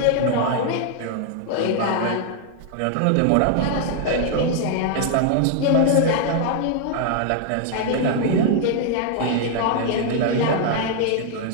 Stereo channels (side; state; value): both; different; correlation 0.00